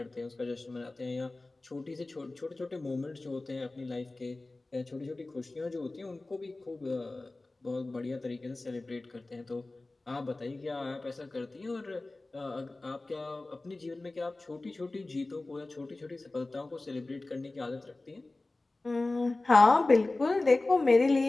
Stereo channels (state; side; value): quieter; right; 3.0 dB